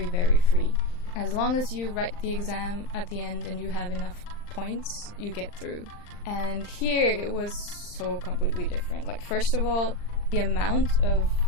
very free. As long as you write the exam at the end and you have enough points, you get through. And here it was so completely different. Like, first of all, the amount of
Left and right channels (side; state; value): right; late; 39 ms